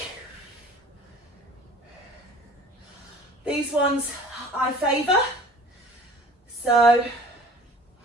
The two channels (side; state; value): both; normal; correlation 0.46